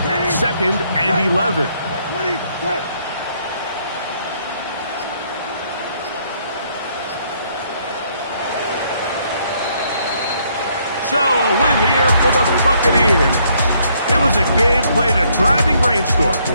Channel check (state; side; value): inverted; both; correlation -0.69